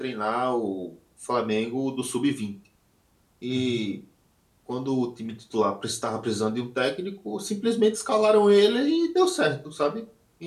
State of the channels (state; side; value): identical; both; correlation 1.00